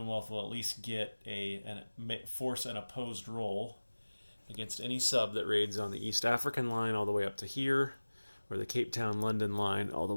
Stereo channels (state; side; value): inverted; both; correlation -1.00